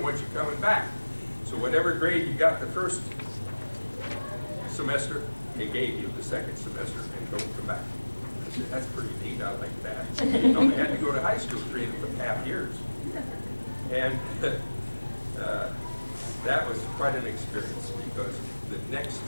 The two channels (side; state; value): both; inverted; correlation -1.00